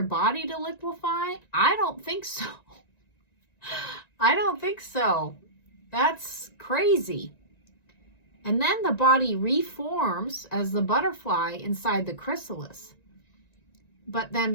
body to liquefy? I don't think so. I don't think so. That's crazy. And then the body reforms as the butterfly inside the chrysalis. But then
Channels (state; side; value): late; right; 1.9 ms